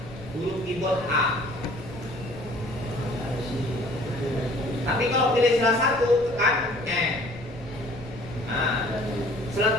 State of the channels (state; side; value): noise; left; rumble, 18 dB below the sound